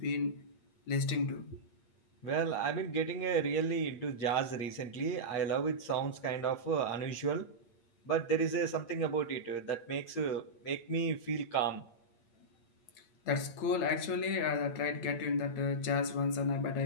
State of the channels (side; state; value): right; late; 8.7 ms